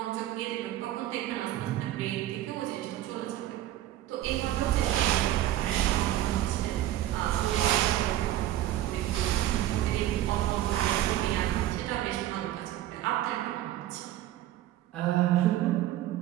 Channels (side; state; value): left; quieter; 13.7 dB